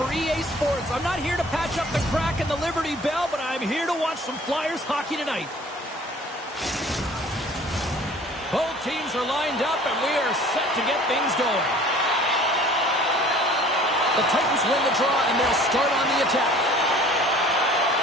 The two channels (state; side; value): normal; both; correlation 0.50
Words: EA Sports. I'm not here to patch up the crack in the Liberty Bell, but I'm here to watch some Flyers hockey tonight. Both teams are lined up, and we are set to get things going. The Titans win the draw, and they'll start on the attack.